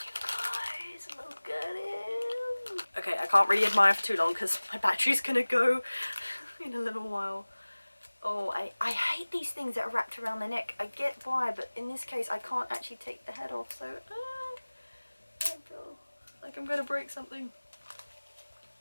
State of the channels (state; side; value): inverted; both; correlation -1.00